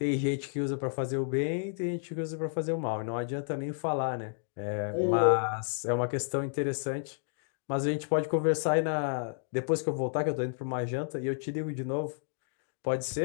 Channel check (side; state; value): right; silent; digital silence